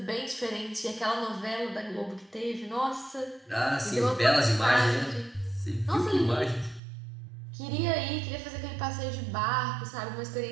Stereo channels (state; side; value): drops out; left; at 6.8 s